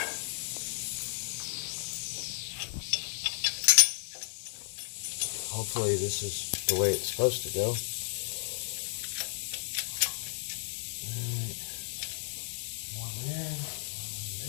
Hopefully this is the way it's supposed to go.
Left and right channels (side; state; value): right; silent; 55 dB below the other